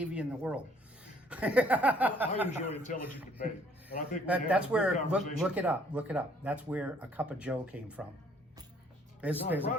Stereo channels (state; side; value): normal; both; correlation 0.62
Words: in the world. I enjoy intelligent debate, and I think we have That's a good where, conversation. look it up. That's where a cup of Joe came from. There's No, I a pride